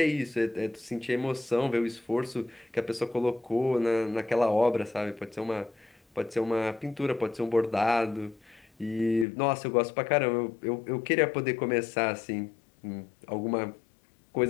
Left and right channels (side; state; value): right; drops out; at 9.2 s